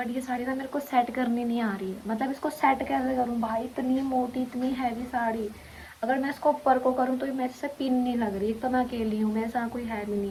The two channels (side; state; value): both; identical; correlation 1.00